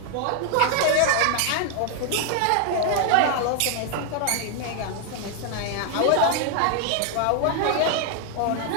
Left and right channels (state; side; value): different; both; correlation 0.00